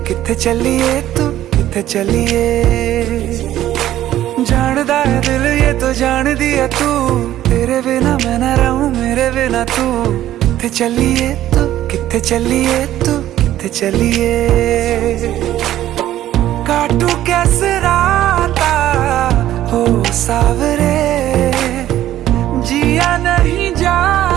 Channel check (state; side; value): quieter; left; 13.1 dB